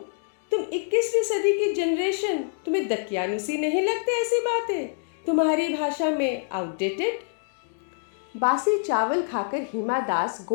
तुम 21वीं सदी की जनरेशन, तुम्हें दकियानुसी नहीं लगते ऐसी बातें? तुम्हारी भाषा में आउटडेटेड। बासी चावल खाकर हिमा दास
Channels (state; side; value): silent; right; digital silence